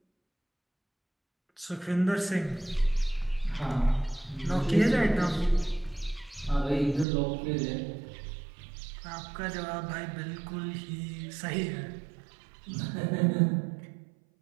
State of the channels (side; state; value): left; drops out; at 7.1 s